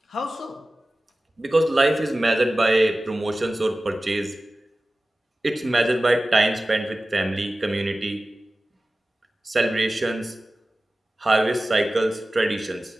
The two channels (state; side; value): normal; both; correlation 0.96